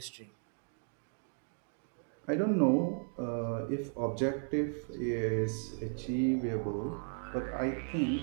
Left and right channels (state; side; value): silent; left; 54 dB below the other